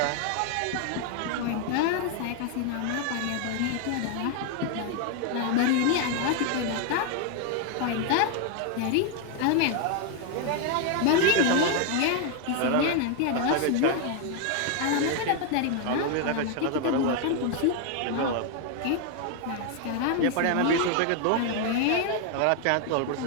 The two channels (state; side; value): different; both; correlation 0.00